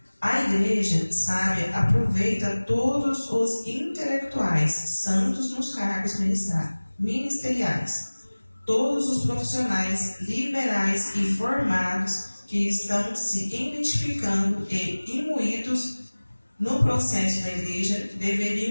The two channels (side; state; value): both; inverted; correlation -1.00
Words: A igreja sábia aproveita todos os intelectuais, santos nos cargos ministeriais, todos os profissionais liberais e formados que estão se identificando e imbuídos no processo da igreja